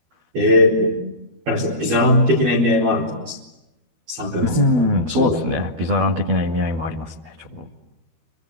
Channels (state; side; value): late; left; 13 ms